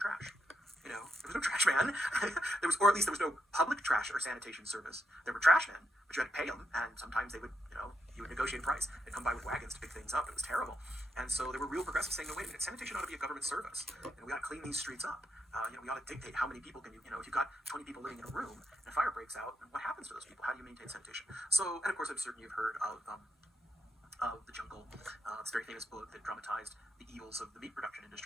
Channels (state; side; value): normal; both; correlation 0.83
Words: There was no trash man. Or at least there was no public trash or sanitation service. There were trash men, but you had to pay them, and sometimes they would, you would negotiate a price. They'd come by with wagons to pick things up. It was terrible. And so there were real progressives saying, no, wait a minute, sanitation ought to be a government service. We ought to clean these streets up. We ought to dictate how many people can if you've got 20 people living in a room and a fire breaks out, then what happens to those people? How do you maintain sanitation? So, and of course, I'm certain you've heard of The Jungle. It's a very famous book that dramatized the evils of the meat production